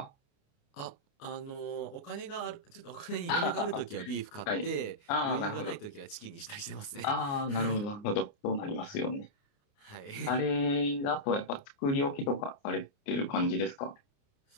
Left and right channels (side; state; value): right; late; 29 ms